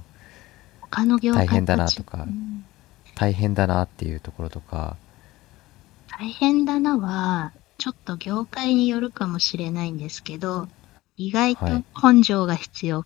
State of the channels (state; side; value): quieter; right; 18.2 dB